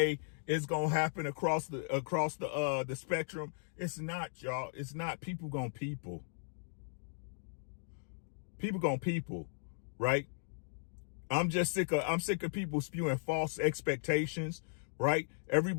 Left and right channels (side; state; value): right; silent; digital silence